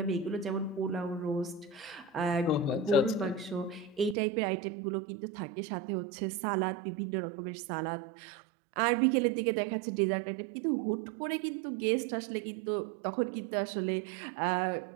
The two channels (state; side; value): drops out; left; at 4.2 s